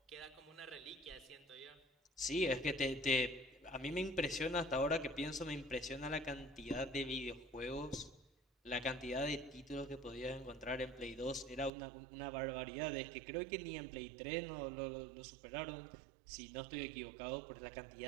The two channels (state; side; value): drops out; left; at 11.7 s